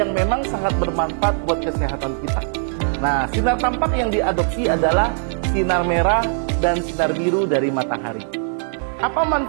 memang sangat bermanfaat buat kesehatan kita. Nah, sinar tampak yang diadopsi adalah sinar merah dan sinar biru dari matahari. Apa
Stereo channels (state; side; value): silent; left; 65 dB below the other